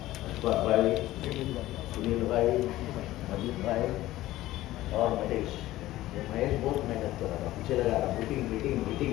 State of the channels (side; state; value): right; quieter; 15.9 dB